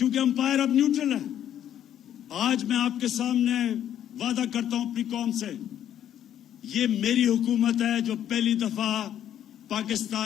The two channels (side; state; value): right; quieter; 10.5 dB